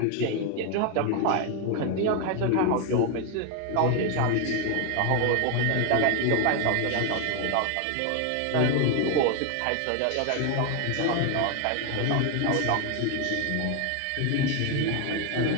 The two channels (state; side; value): different; both; correlation 0.01